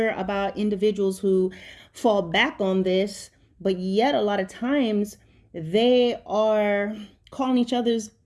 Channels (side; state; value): both; identical; correlation 1.00